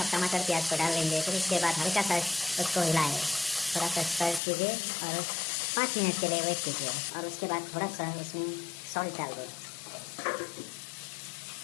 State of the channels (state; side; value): drops out; right; at 4.4 s